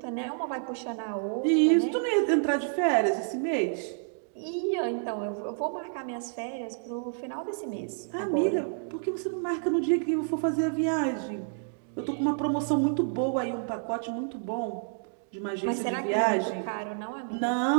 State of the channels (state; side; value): silent; left; digital silence